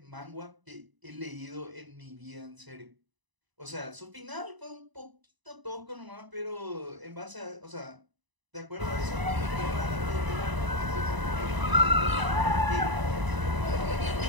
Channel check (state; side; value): late; left; 1.0 ms